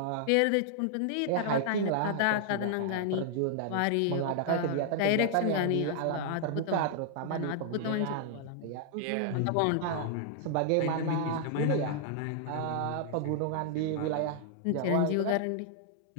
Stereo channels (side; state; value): both; different; correlation -0.01